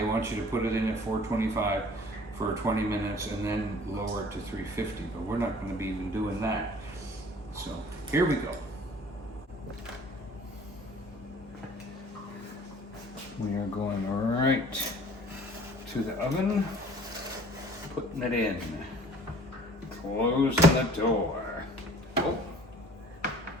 want you to put it in at 425 for 20 minutes and then lower it to 350, but we're not going to be even doing that. So here we go. We are going right to the oven, putting it in, closing the door. Oh,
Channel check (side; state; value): both; normal; correlation 0.50